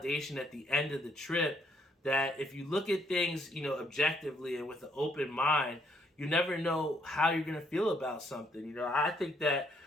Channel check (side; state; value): both; normal; correlation 0.70